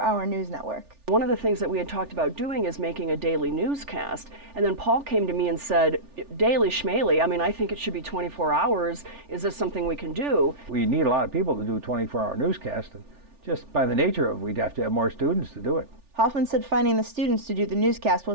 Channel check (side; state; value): left; late; 3.4 ms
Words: news network. One of the things that we had talked about doing is making a daily newscast, and then Paul came to me and said, daily schmaley, I think it should be 24 hours. Is this something we can do? We need a lot of people to do a 24-hour newscast, and just by the nature of it, we'd have to have more students to do it. Hoffman said finding the students to do the newscast